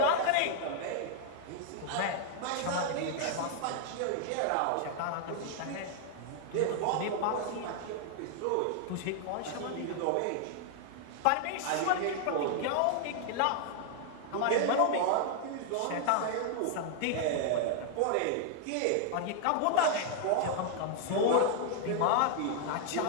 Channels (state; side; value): different; both; correlation 0.00